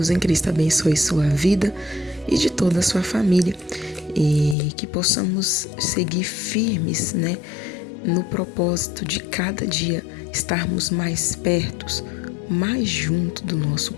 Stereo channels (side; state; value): right; drops out; at 4.5 s